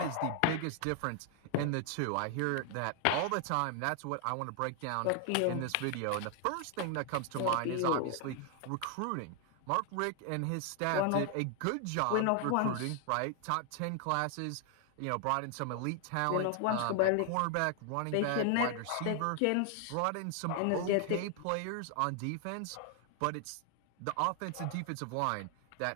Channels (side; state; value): both; different; correlation 0.00